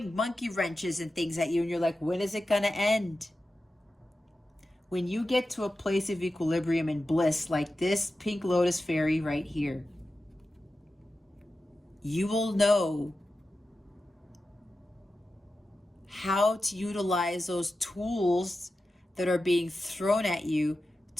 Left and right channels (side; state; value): both; normal; correlation 0.92